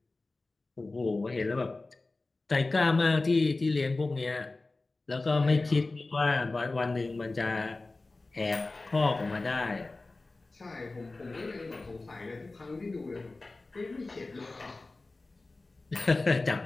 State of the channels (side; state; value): right; quieter; 3.3 dB